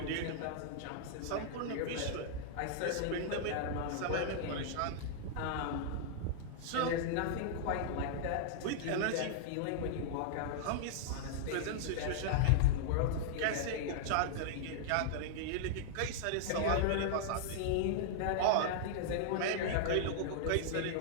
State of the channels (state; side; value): different; both; correlation -0.01